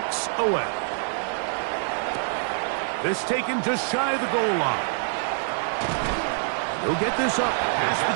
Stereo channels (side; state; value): left; silent; 61 dB below the other